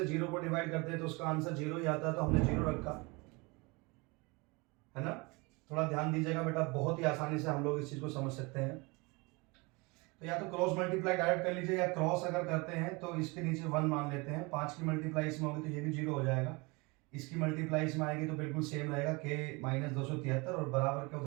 0 को डिवाइड करते हैं तो उसका आंसर 0 ही आता है, तो हमने 0 रखा है ना। थोड़ा ध्यान दीजिएगा बेटा, बहुत ही आसानी से हम लोग इस चीज को समझ सकते हैं। तो या तो क्रॉस मल्टीप्लाई डायरेक्ट कर लीजिए, या क्रॉस अगर करते हैं तो इसके नीचे 1 मान लेते हैं। 5 की मल्टीप्लाई इसमें होगी तो ये भी 0 हो जाएगा, इसकी मल्टीप्लाई इसमें आएगी तो बिल्कुल सेम रहेगा k माइनस 273 और बराबर के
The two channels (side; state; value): left; quieter; 26.8 dB